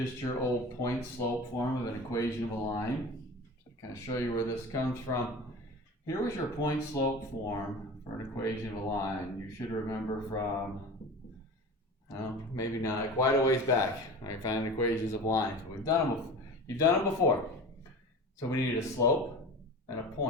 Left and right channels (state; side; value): normal; both; correlation 0.34